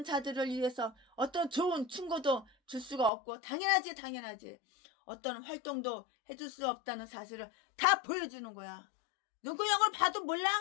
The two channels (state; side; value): drops out; right; at 3.1 s